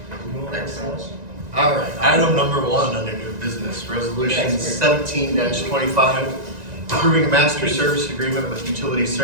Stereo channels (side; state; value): left; late; 1.9 ms